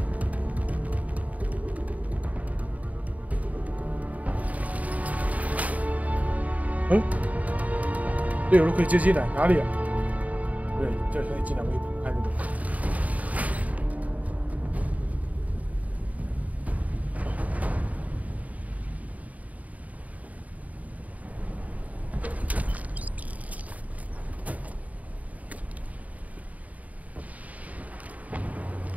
嗯，队友都可以接进来，哪里啊？对，这可以进来，我也看这个。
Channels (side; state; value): left; late; 0.071 ms